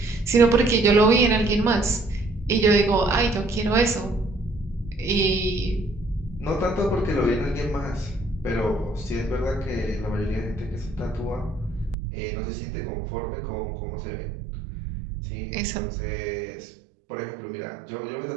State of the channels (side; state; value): left; drops out; at 12.0 s